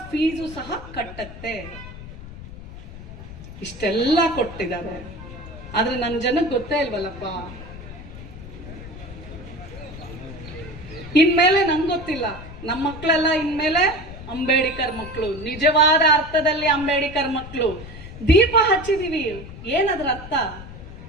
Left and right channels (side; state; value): left; noise; rumble, 13 dB below the sound